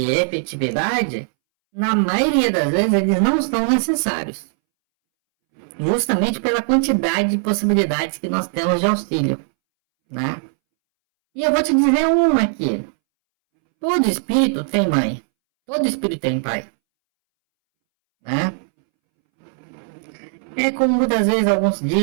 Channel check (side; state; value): left; silent; 65 dB below the other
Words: efetividade, na maioria das vezes eles não são necessários. Justamente pela quantidade de possibilidades que nós temos de auxílio. Né? E eu vou te dizer uma aqui. Todo espírito tem mãe. Todo espírito tem pai. Né? É como muitas vezes alguns